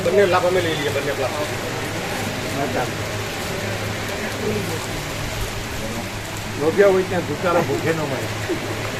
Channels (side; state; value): both; identical; correlation 1.00